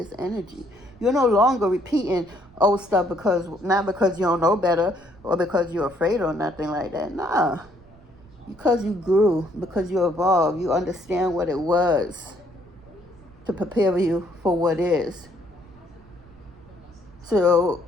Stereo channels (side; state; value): right; noise; rumble, 25 dB below the sound